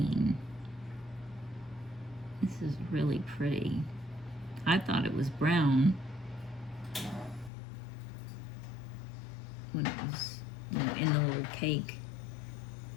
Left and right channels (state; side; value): drops out; right; at 7.5 s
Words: This is really pretty. I thought it was brown when it was, you know, in the little cake.